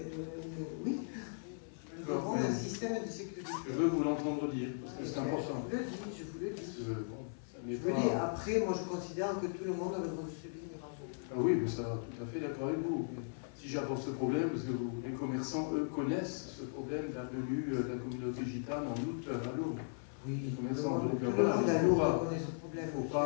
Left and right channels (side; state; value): right; silent; 53 dB below the other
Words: oui, nous aurons un système de sécurité. Je veux vous l'entendre dire, parce que c'est important. Je vous le dis. Parce que, bon, ça n'est je vous le dis, après, moi je considère que tout le monde a le droit de se baigner. Ah oui, mais ça, tout à fait d'accord avec vous. Mais si j'apporte ce problème, parce que les commerçants, eux, connaissent ce problème de la venue de la communauté gitane en août à Lourdes. Oui, les commerçants, donc tout le voilà, monde à Lourdes connaît ce problème. Il ne faut